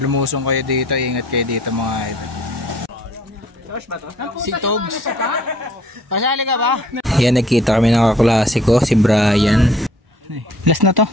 lumusong kayo dito, ingat kayo dito mga idol. Si Togs. Pasali ka ba? Yan, nagkita kami ng kaklase ko, si Brian. Last na to.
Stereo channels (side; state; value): both; normal; correlation 0.58